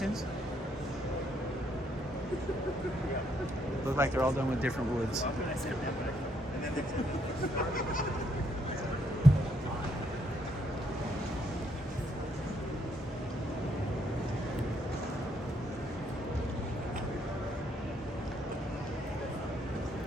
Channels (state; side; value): normal; both; correlation 0.72